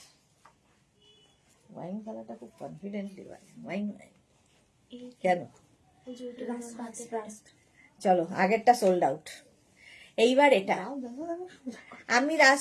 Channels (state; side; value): identical; both; correlation 1.00